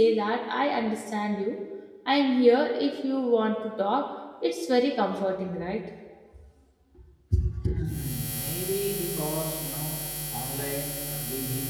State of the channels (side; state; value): both; identical; correlation 1.00